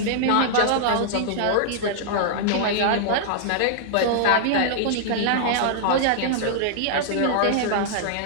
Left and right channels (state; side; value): different; both; correlation -0.01